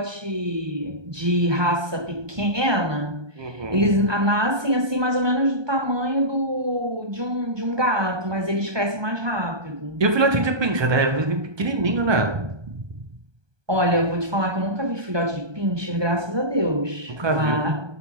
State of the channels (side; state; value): left; late; 1.2 ms